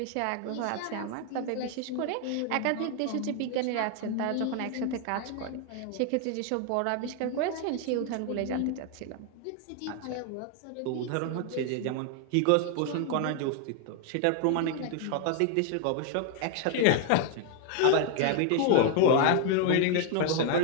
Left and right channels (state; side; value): different; both; correlation 0.00